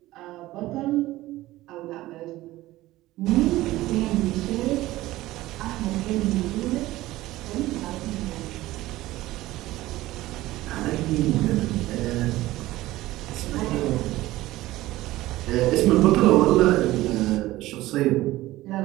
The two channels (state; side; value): quieter; left; 17.0 dB